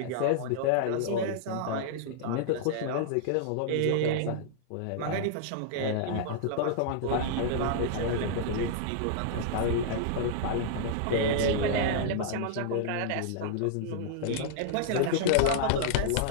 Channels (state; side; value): different; both; correlation -0.01